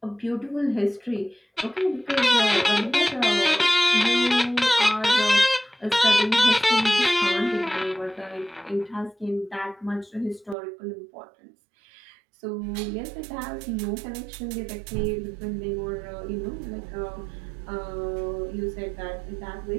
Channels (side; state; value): left; drops out; at 10.6 s